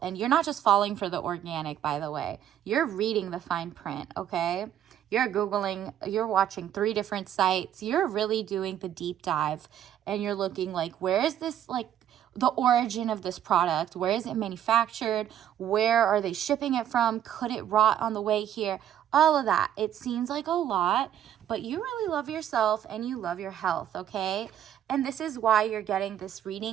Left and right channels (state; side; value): quieter; left; 10.6 dB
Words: and you're not just falling for the organic, by the way. You're reading the fine print, okay? You're Googling, you're watching 3 different sites. You're really doing the deep dive, and you're looking like, where is this, the origin of this product? Where is it manufactured? Where are they shipping it from? Could it rot on the way here? All of that. It seems like a lot, but you really love yourself and you love your health, okay? And this is why you're getting this